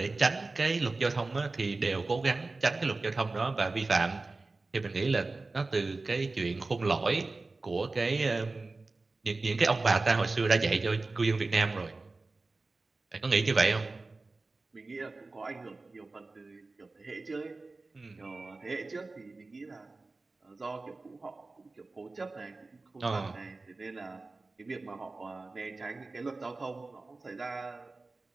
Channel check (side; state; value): left; quieter; 3.5 dB